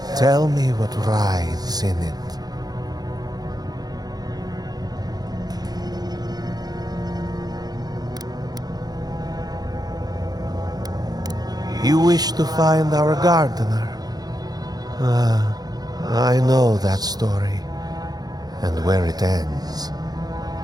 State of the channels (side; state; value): left; late; 0.19 ms